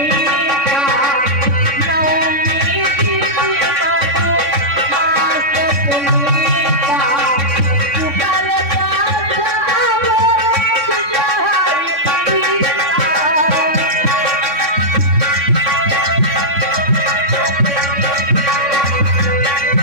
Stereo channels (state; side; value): late; left; 3.6 ms